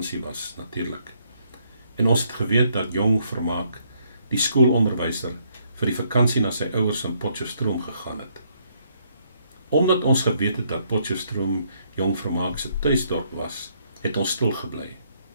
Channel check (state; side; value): inverted; both; correlation -0.70